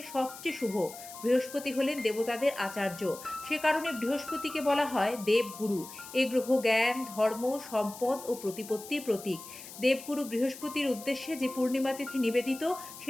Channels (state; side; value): noise; left; hiss, 14 dB below the sound